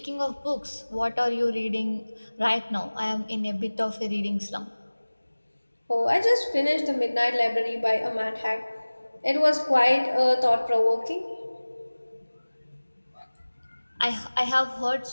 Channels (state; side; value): inverted; both; correlation -1.00